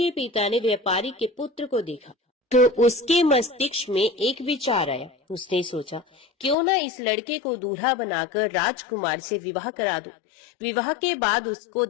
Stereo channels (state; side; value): drops out; right; at 6.6 s